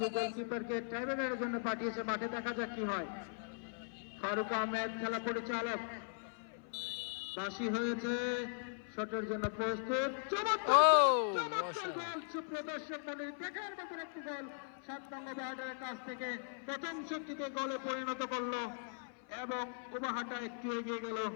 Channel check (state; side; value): silent; right; 52 dB below the other